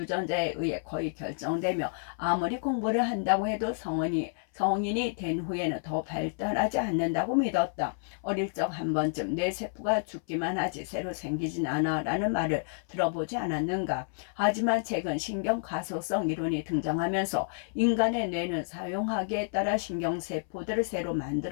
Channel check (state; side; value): silent; right; 58 dB below the other